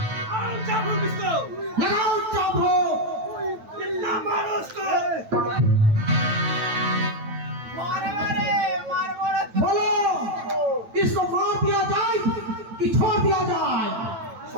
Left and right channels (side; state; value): left; late; 9.1 ms